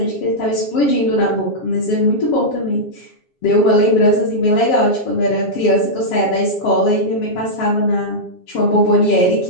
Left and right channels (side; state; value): right; late; 7.5 ms